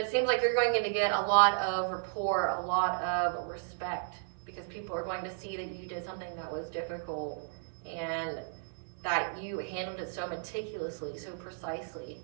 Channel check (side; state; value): left; silent; 55 dB below the other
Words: it seems like you're going to get a lot of rapport, a lot of respect, because people are going to see that you did something that was difficult and that you handled it so meticulously, so precisely,